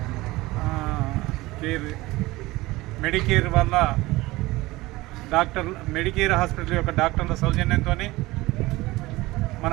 మెడికేర్ వల్ల మెడికేర్ హాస్పిటల్ యొక్క డాక్టర్ల సౌజన్యంతో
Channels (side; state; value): left; quieter; 19.8 dB